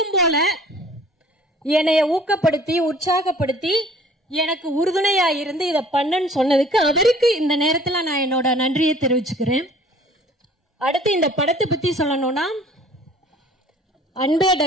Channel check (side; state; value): both; normal; correlation 0.51